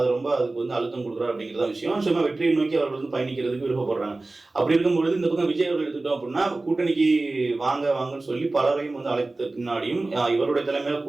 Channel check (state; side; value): quieter; left; 3.1 dB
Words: ரொம்ப அதுக்கு வந்து அழுத்தம் கொடுக்குறாரு அப்படிங்கிறத விஷயம். சும்மா வெற்றியை நோக்கி அவர்கள் வந்து பயணிக்கிறதுக்கு விருப்பப்படுறாங்க. அப்படி இருக்கும்பொழுது இந்த பக்கம் விஜய் அவர்கள் எடுத்துட்டோம் அப்படின்னா கூட்டணிக்கு வாங்கன்னு சொல்லி பலரையும் வந்து அழைத்த பின்னாடியும் இவருடைய தலைமையில